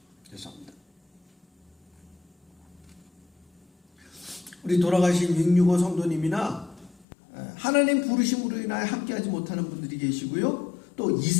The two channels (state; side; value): drops out; right; at 7.1 s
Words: 죄송합니다. 우리 돌아가신 665 성도님이나 하나님 부르심으로 인하여 함께하지 못하는 분들이 계시고요. 또